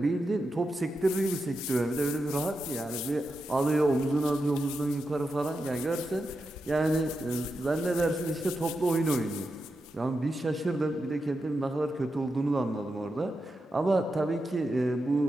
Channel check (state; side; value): normal; both; correlation 0.88